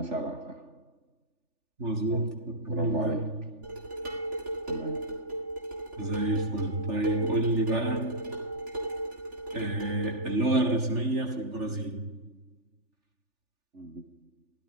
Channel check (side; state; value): left; late; 3.4 ms